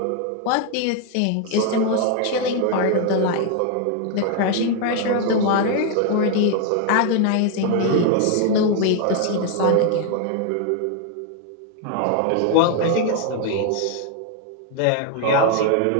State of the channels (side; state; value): both; different; correlation 0.00